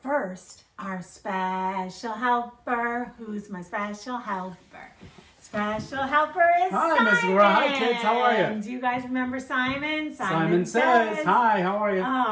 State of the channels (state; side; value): identical; both; correlation 1.00